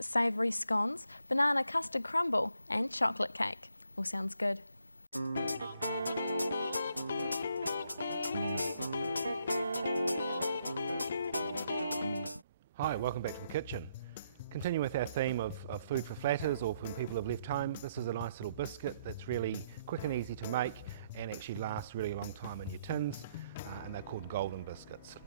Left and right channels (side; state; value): both; inverted; correlation -0.73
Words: scones, banana custard crumble and chocolate cake. All sounds good. Hi, welcome back to the kitchen. Continue with our theme of food for flatters or when people have left home. This is a nice little biscuit that's really quick and easy to make and actually lasts really a long time in your tins, and they're called Golden Biscuits.